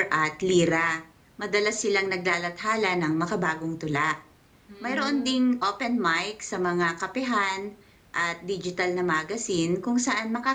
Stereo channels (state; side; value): identical; both; correlation 1.00